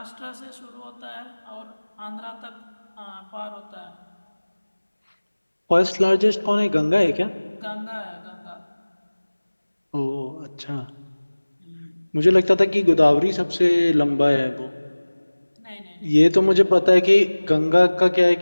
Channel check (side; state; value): both; inverted; correlation -1.00